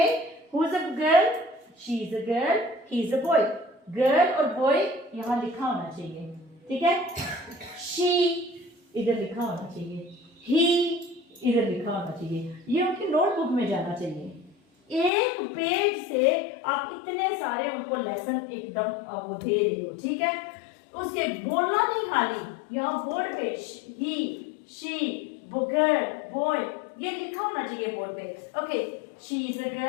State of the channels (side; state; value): right; drops out; at 15.1 s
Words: who is a girl? She is a girl, he is a boy. Girl और बॉय यहाँ लिखा होना चाहिए, ठीक है? शी इधर लिखा होना चाहिए, ही इधर लिखा होना चाहिए. ये उनकी नोटबुक में जाना चाहिए. एक पेज से आप इतने सारे उनको लेसन एकदम वो दे रहे हो, ठीक है? उसके बोलना नहीं, खाली यहाँ बोर्ड पे ही, शी, गर्ल, बॉय, ये लिखा होना चाहिए बोर्ड पे. Okay, she is a